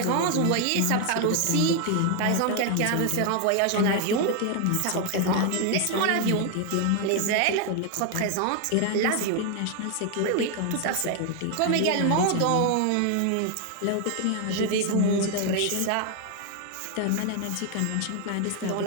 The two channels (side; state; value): both; different; correlation 0.00